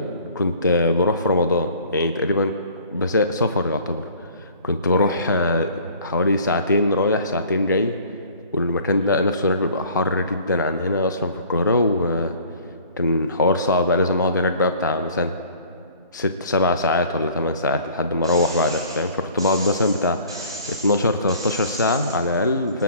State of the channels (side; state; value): both; inverted; correlation -0.51